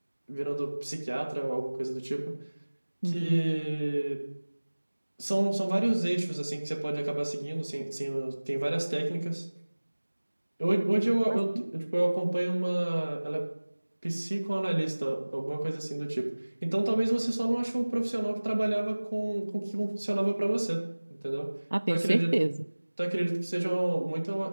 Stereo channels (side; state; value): both; inverted; correlation -1.00